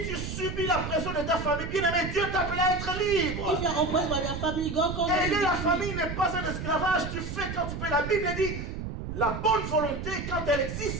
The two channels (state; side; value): noise; right; rumble, 6 dB below the sound